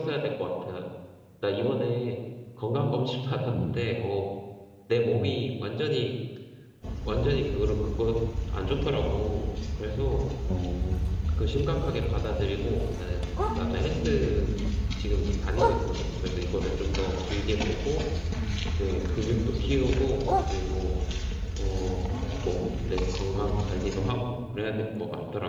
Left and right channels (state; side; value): identical; both; correlation 1.00